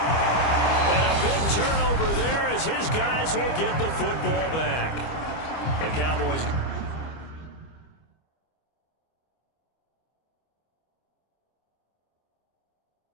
And a big turnover there as his guys will get the football back. The Cowboys going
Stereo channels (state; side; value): late; right; 25 ms